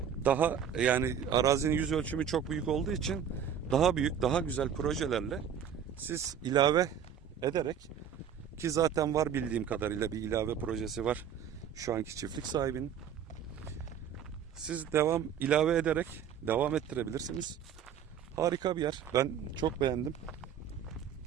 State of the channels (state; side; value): quieter; left; 8.3 dB